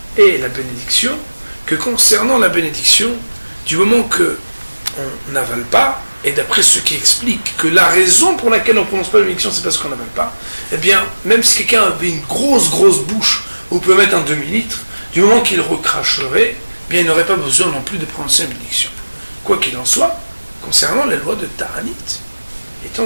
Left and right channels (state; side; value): inverted; both; correlation -1.00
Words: et la bénédiction, que concernant la bénédiction, du moment qu'on n'avale pas, et d'après ceux qui expliquent que la raison pour laquelle on ne prononce pas la bénédiction, c'est parce qu'on n'avale pas, eh bien, même si quelqu'un avait une grosse bouche, où on peut mettre un demi-litre, du moment qu'il recracherait, eh bien, il n'aurait pas besoin non plus de prononcer la bénédiction. Quoi qu'il en soit, concernant les lois de ta'anit, étant